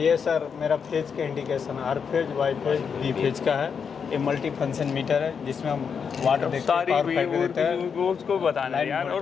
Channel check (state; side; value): quieter; right; 6.5 dB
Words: सर मेरा फेज का इंडिकेशन है, हर phase Y phase B phase का है। ये मल्टी फंक्शन मीटर है जिसमें हम वाट देखते हैं, सारी पावर फैक्टर देते हैं। वो उसको बताना है लाइन यार। और